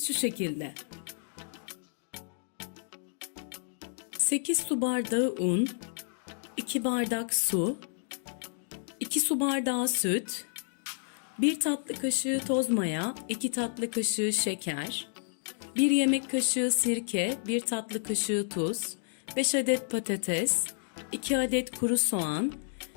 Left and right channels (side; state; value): right; silent; digital silence